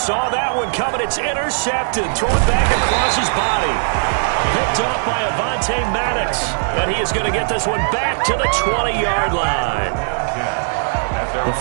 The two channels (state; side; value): silent; left; digital silence